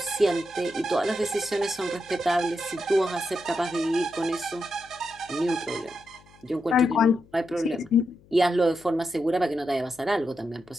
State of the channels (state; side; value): noise; left; hum, 27 dB below the sound